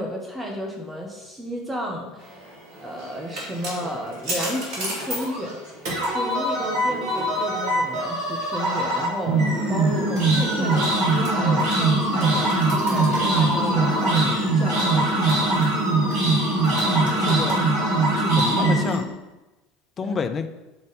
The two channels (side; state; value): both; normal; correlation 0.50